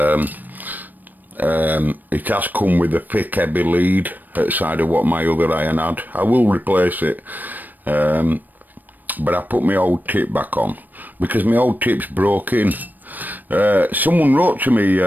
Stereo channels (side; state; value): left; late; 0.088 ms